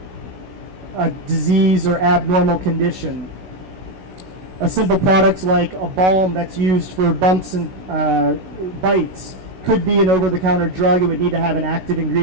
a disease or abnormal condition. A simple product like a balm that's used for bumps and bites could be an over-the-counter drug. It would need to have an active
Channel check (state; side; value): late; left; 16 ms